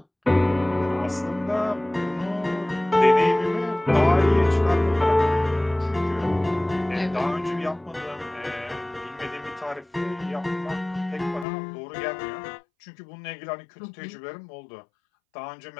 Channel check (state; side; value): drops out; right; at 11.5 s